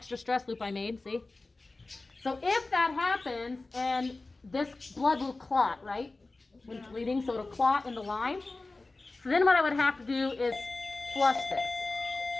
stress loop I made, see? So if that happens, and this blood will clot, right? When it's bleeding, so it'll clot in the line. So then what I would have to do is flush this.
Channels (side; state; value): right; quieter; 3.3 dB